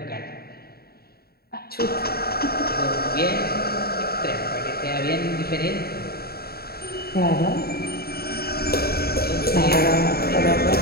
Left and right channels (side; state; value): right; late; 0.45 ms